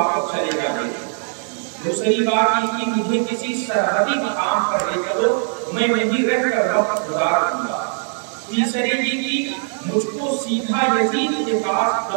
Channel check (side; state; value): left; silent; 56 dB below the other